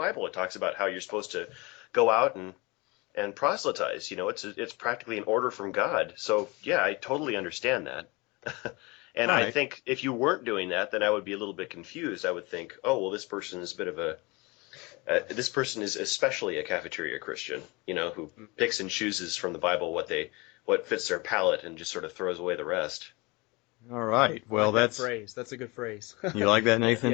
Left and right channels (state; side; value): quieter; right; 25.6 dB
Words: It talks about how you're supposed to go out and proselytize. It's practically an order from God. So yeah, I totally understand that. And right. I think if you weren't doing that, then I would be a little bit confused. I would think, oh well, this person is a bit of this person is especially a cafeteria Christian, who picks and chooses from the Bible what fits their palate and just sort of throws away the rest. All right. Well, that's a good phrase. You like that, Nathan?